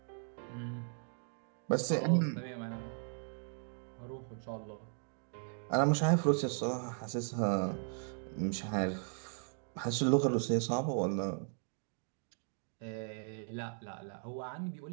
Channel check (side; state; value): left; silent; 53 dB below the other